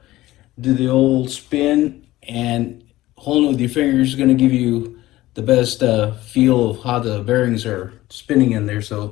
Do the old spin, and holding it with your fingers is going to give you the best feel of how the bearings are spinning in there.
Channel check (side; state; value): right; quieter; 16.7 dB